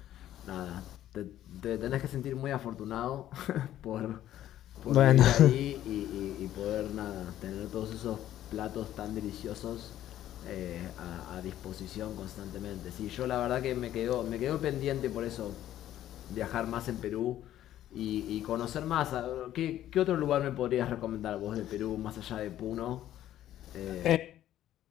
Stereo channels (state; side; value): quieter; right; 12.5 dB